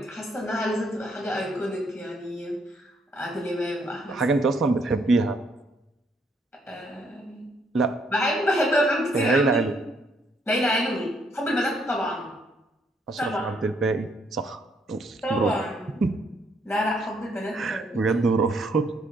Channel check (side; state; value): both; normal; correlation 0.71